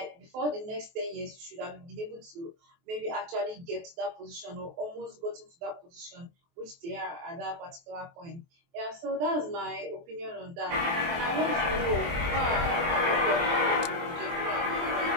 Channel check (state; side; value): late; left; 23 ms